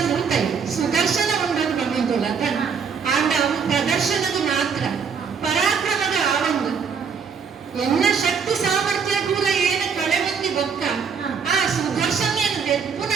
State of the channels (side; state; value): left; quieter; 6.2 dB